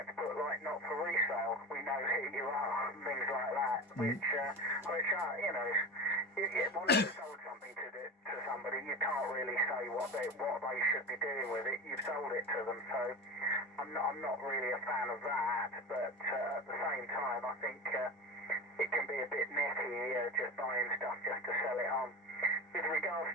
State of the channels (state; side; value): normal; both; correlation 0.27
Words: put like not for resale. We know who you are, and things like that, which are, you know, once you've sold something to somebody, you can't really say what they should be doing with it. You've sold it to them, so I'm not really a fan of that. But at the same time, I think it can be a bit necky just buying stuff just to sell it on. With regards